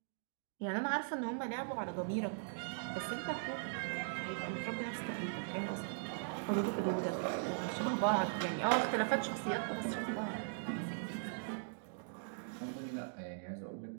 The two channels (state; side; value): silent; left; digital silence